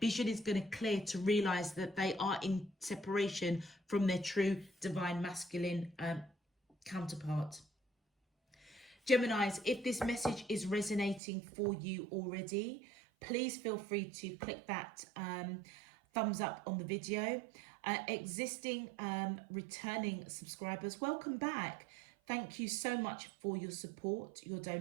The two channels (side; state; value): left; drops out; at 11.2 s